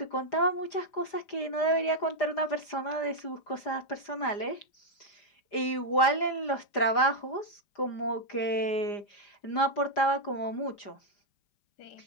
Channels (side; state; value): right; late; 4.9 ms